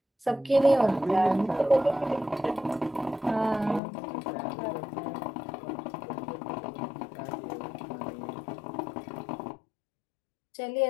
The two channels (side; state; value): right; drops out; at 3.8 s